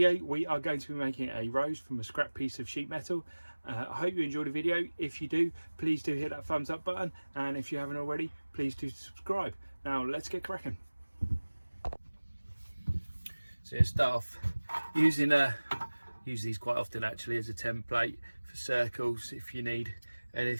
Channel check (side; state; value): both; inverted; correlation -1.00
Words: we are going to be making a rose from a scrap piece of sheet metal. I hope you enjoyed the video. If you do, please do hit that thumbs up button, and if you haven't already, please do subscribe. Now let's get cracking. So start off using use these quite often actually as a template for circles. If you need